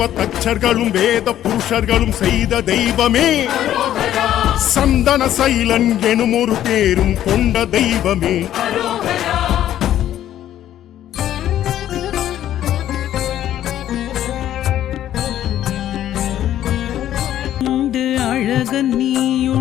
தச்சர்களும் வேத புருஷர்களும் செய்த தெய்வமே அரோகரா சந்தன சைலன் எனும் ஒரு பேரும் கொண்ட தெய்வமே அரோகரா உண்டு அழகன்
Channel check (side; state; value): right; quieter; 11.9 dB